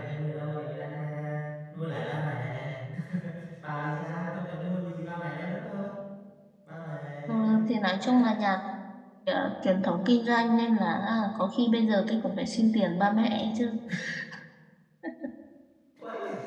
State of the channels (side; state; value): both; identical; correlation 1.00